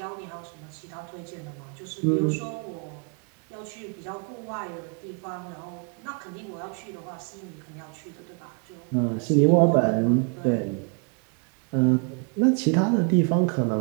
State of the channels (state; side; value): quieter; left; 38.1 dB